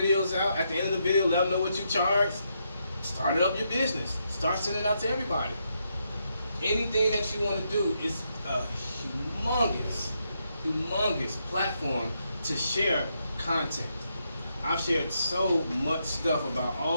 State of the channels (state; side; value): inverted; both; correlation -0.80